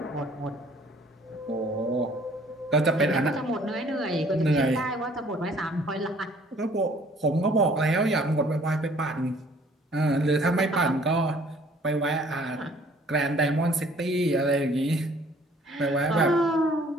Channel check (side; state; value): both; normal; correlation 0.57